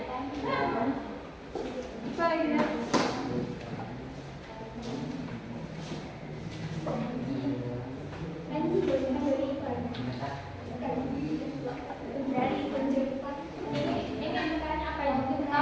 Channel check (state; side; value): identical; both; correlation 1.00